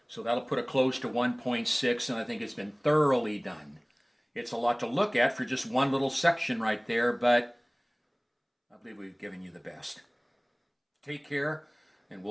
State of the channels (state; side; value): identical; both; correlation 1.00